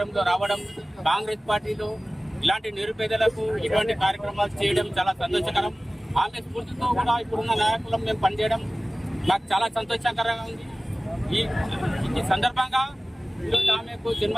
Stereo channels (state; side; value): normal; both; correlation 0.97